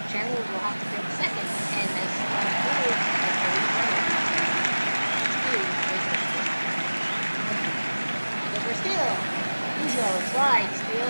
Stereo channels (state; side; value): inverted; both; correlation -1.00